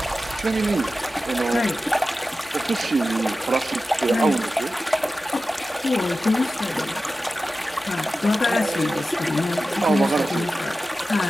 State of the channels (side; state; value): both; normal; correlation 0.94